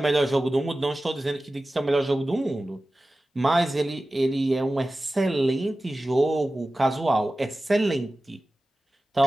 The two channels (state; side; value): normal; both; correlation 0.96